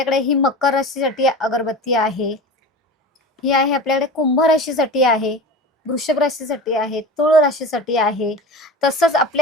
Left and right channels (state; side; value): normal; both; correlation 0.32